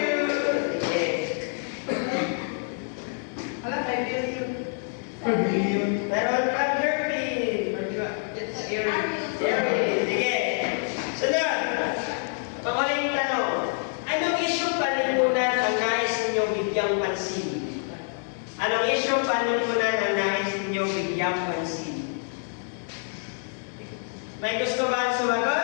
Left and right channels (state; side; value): silent; right; 56 dB below the other